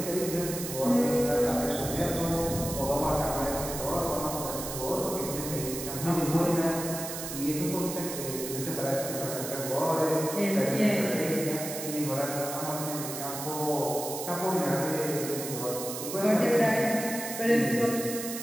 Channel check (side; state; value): right; noise; hiss, 7 dB below the sound